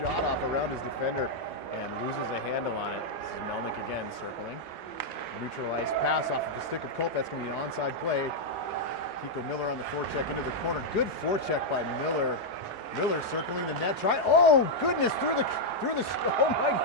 off around his defender and loses a handle on it. This is Melnick again circling. Neutralized pass off of the stick of Culp. That's going to be an onside play. Kiko Miller on the forecheck into the corner. Good forecheck by Miller. Miller circling the net. Oh goodness, through the oh my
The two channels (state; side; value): late; right; 1.2 ms